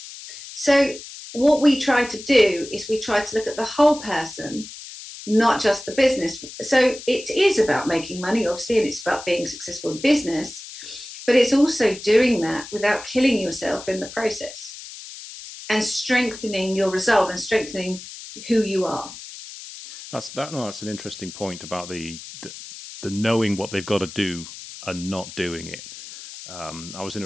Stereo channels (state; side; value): noise; left; hiss, 13 dB below the sound